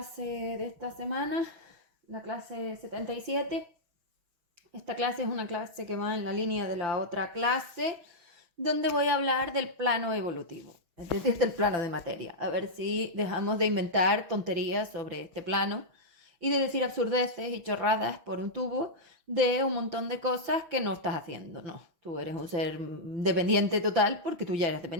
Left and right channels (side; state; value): left; late; 6.1 ms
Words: de esta semana, la clase 77. Esta clase es una clase que va en la línea de la otra clase, donde voy a hablar del plano evolutivo, es decir, del plano de materia. A ver si dejamos de inventar tonterías sobre este plano y de decir absurdeces y chorradas por un tubo de un montón de cosas que no estás haciendo. No, tú eres un ser dependiente total porque tú ya eres